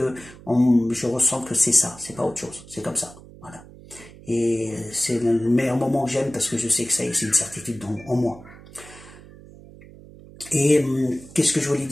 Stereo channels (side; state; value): right; noise; hum, 20 dB below the sound